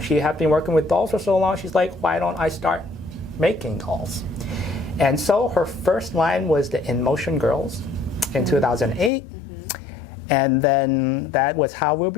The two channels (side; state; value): right; drops out; at 9.1 s